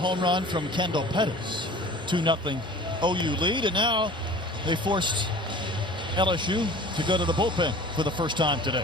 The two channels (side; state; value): both; normal; correlation 0.43